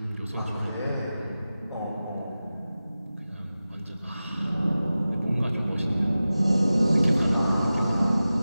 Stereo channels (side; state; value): both; inverted; correlation -0.95